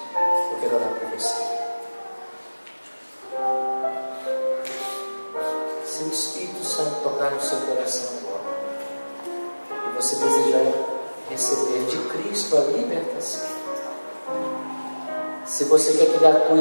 Eu quero orar por você. Se o Espírito Santo tocar no seu coração agora, e você desejar receber de Cristo a libertação, se você quer que Ele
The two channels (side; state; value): both; inverted; correlation -1.00